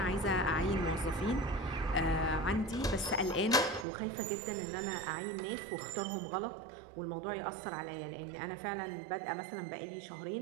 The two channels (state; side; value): drops out; left; at 3.9 s